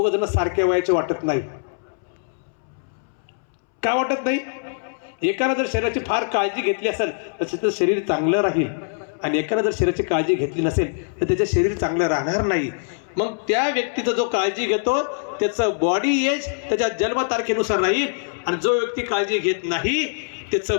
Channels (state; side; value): silent; right; 64 dB below the other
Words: जण सारख्या वयाचे वाटत नाही. का वाटत नाही. एकानं जर शरीराची फार काळजी घेतली असेल तर त्याचं शरीर चांगलं राहील, आणि एकानं जर शरीराची काळजी घेतली नसेल तर त्याचं शरीर चांगलं राहणार नाही. मग त्या व्यक्तीचा जो काळजी घेतो त्याचं बॉडी एज त्याच्या जन्मतारखेनुसार राहील, आणि जो व्यक्ती काळजी घेत नाही त्याचं